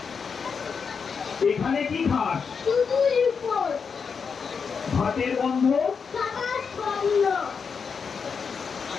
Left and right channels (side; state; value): right; quieter; 5.9 dB